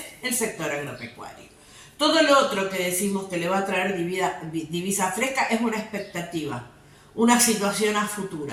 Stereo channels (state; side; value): identical; both; correlation 1.00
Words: el sector agropecuario. Todo lo otro que decimos que le va a traer divisa fresca es una expectativa, una situación a